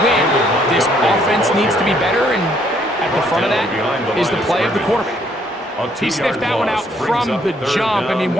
win, this offense needs to be better, and at the front of that is the play of the quarterback. He sniffed that one out from the jump. I mean,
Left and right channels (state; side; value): normal; both; correlation 0.67